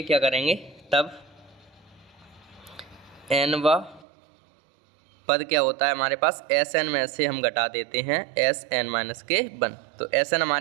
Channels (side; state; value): left; drops out; at 4.0 s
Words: क्या करेंगे, तब n व पद क्या होता है हमारे पास, Sn में से हम घटा देते हैं Sn माइनस के 1। तो Sn